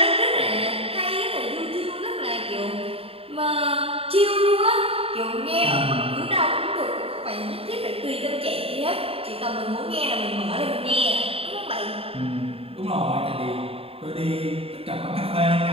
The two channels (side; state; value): left; late; 0.28 ms